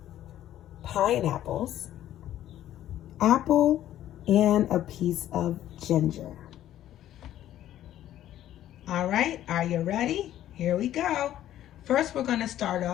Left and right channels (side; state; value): right; quieter; 12.4 dB